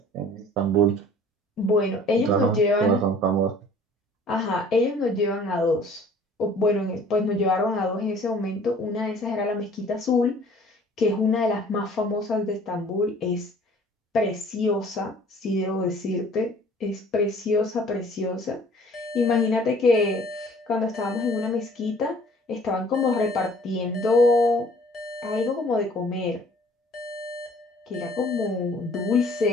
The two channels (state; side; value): normal; both; correlation 0.52